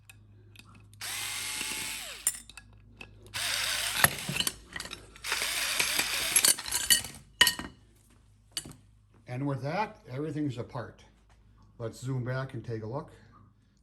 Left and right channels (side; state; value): both; identical; correlation 1.00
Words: And with that, everything's apart. Let's zoom back and take a look.